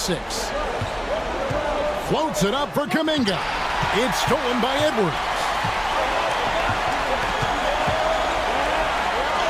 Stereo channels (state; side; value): identical; both; correlation 1.00